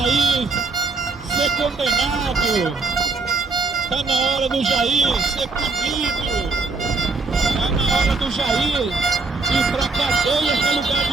ser condenado. Tá na hora do Jair ser punido. Tá na hora do Jair ir pra cadeia que é lugar de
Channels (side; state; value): left; quieter; 3.9 dB